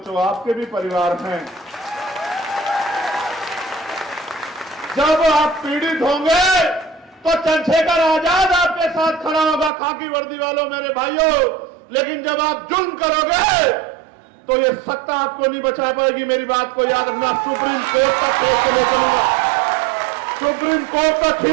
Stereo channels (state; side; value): drops out; left; at 9.7 s